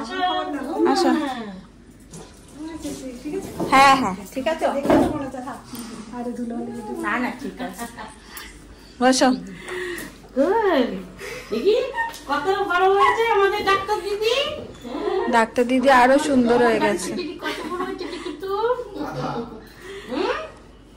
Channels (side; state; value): both; identical; correlation 1.00